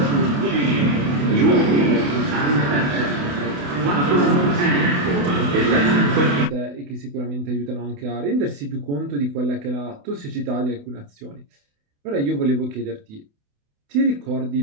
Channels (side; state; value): left; late; 28 ms